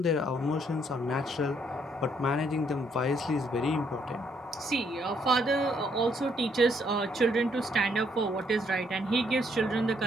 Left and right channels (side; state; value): both; normal; correlation 0.70